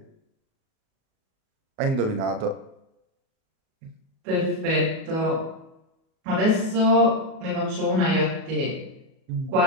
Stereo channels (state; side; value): late; left; 37 ms